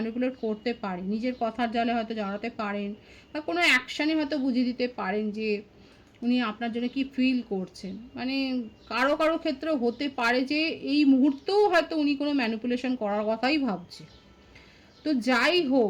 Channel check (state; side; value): identical; both; correlation 1.00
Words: করতে পারেন, নিজের কথার জালে হয়তো জড়াতে পারেন, বা কোনো অ্যাকশানে হয়তো বুঝিয়ে দিতে পারেন যে উনি আপনার জন্য কি ফিল করছেন। মানে কারো কারো ক্ষেত্রে হতে পারে যে এই মুহূর্তেও হয়তো উনি কোনো ম্যানিপুলেশন করার কথাই ভাবছে। তো যাই